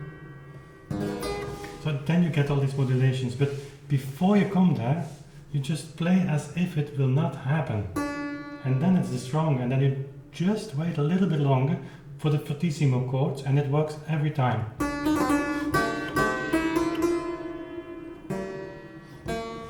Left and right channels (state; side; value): identical; both; correlation 1.00